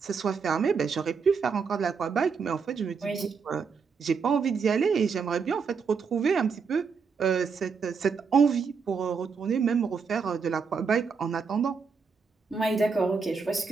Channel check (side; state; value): left; quieter; 5.5 dB